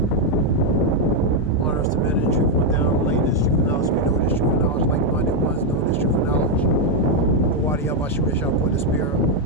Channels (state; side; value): normal; both; correlation 0.01